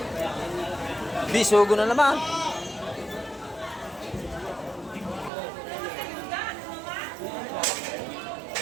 Bisugo na naman.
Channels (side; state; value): left; drops out; at 5.3 s